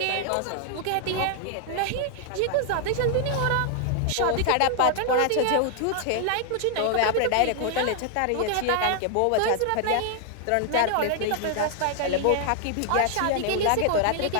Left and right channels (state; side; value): different; both; correlation 0.00